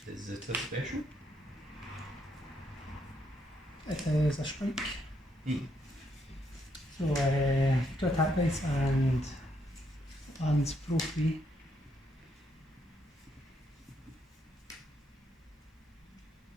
Is it a special? It is a strike. Hmm. So 2 attack dice and lands pro free.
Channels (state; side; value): normal; both; correlation 0.75